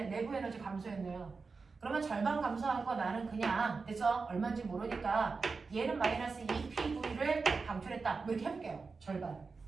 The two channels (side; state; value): left; quieter; 4.5 dB